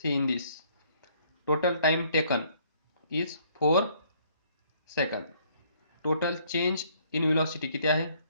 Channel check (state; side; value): inverted; both; correlation -0.63